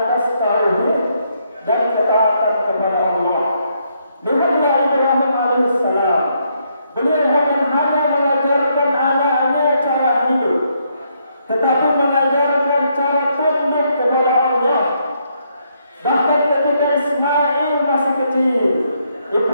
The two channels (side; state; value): both; inverted; correlation -0.75